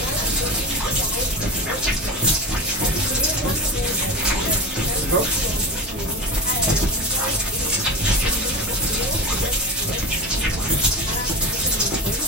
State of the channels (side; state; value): both; normal; correlation 0.26